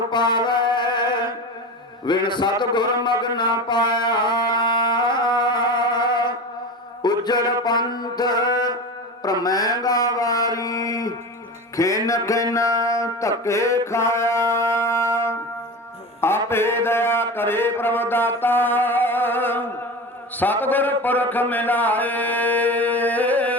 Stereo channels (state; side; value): normal; both; correlation 0.28